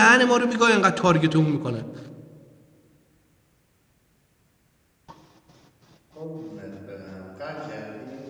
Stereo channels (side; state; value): both; identical; correlation 1.00